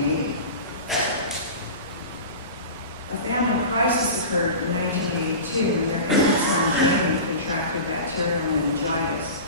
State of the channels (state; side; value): inverted; both; correlation -0.32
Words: A family crisis occurred in 1982 when their infant son, Jamie, contracted bacterial meningitis.